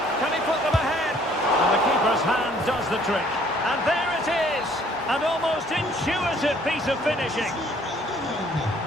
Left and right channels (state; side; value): normal; both; correlation 0.60